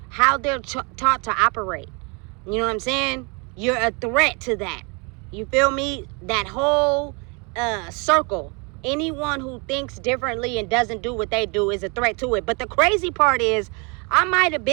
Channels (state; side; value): quieter; left; 31.7 dB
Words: how they're taught to operate. You know what I'm saying? You're a threat to that. You feel me? That whole circle. Anyone who thinks differently and doesn't do what they do is a threat to it. But the crazy part is, I might have